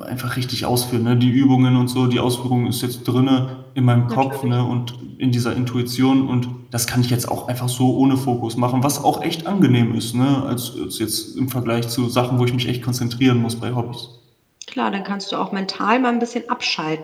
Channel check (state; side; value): identical; both; correlation 1.00